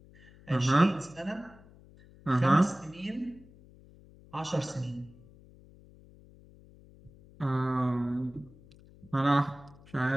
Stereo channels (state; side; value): noise; left; hum, 24 dB below the sound